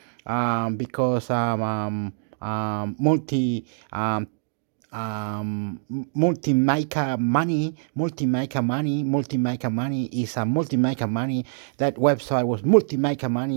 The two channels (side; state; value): left; silent; digital silence